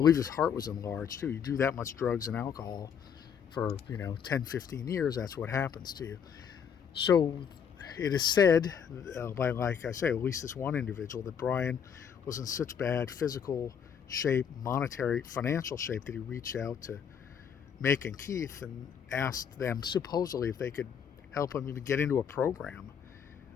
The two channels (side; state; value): right; quieter; 7.6 dB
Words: his heart was enlarged too. You do that much drugs and alcohol for 10, 15 years, that's what happens to you. So it is said by, like I say, at least this one individual, that Brian was in such bad physical shape, monetary, financial shape, that he reached out to Mick and Keith and asked them supposedly if they could help him even get into a program,